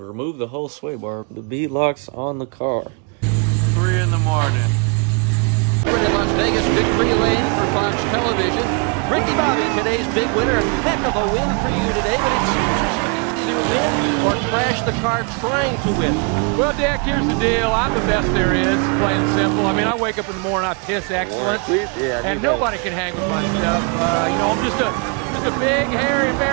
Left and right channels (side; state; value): left; quieter; 34.4 dB